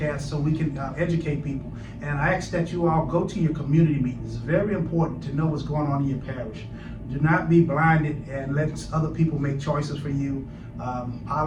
so we can educate people. And I ask that you all go to your community meetings. It's very important to know what's going on in your parish. Do not be blinded and let other people make choices for you.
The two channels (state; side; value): identical; both; correlation 1.00